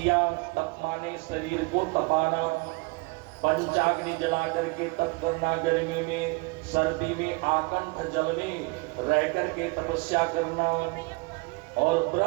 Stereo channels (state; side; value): quieter; left; 28.3 dB